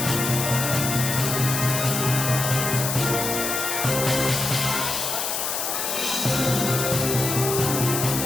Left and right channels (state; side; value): noise; left; hiss, 1 dB below the sound